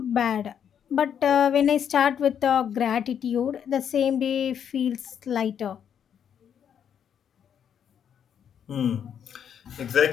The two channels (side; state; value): right; quieter; 8.5 dB